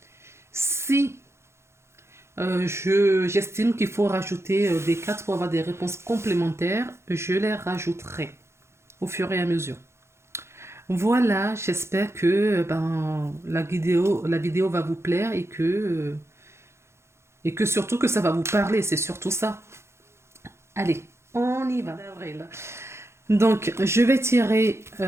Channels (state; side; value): late; left; 0.13 ms